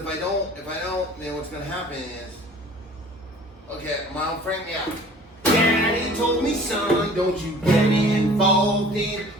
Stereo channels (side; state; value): both; normal; correlation 0.49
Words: I don't, then what's gonna happen is, okay, my old friend, yeah. Daddy told me, son, don't you get involved in